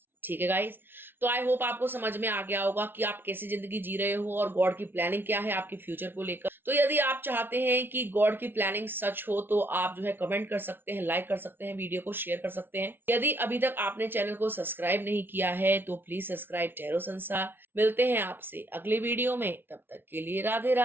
ठीक है गाइस, तो आई होप आपको समझ में आ गया होगा कि आप कैसी जिंदगी जी रहे हो और गॉड की प्लानिंग क्या है आपके फ्यूचर को लेकर। तो यदि आप चाहते हैं कि गॉड की प्लानिंग सच हो तो आप जो है कमेंट कर सकते हैं, लाइक कर सकते हैं, वीडियो को शेयर कर सकते हैं। यदि अभी तक आपने चैनल को सब्सक्राइब नहीं किया है तो प्लीज सब्सक्राइब टैरो संसार। मिलते हैं आपसे अगले वीडियो में, तब तक के लिए राधे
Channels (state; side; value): late; left; 0.10 ms